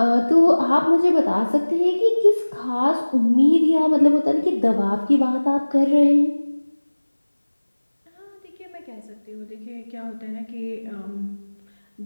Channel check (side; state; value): both; inverted; correlation -1.00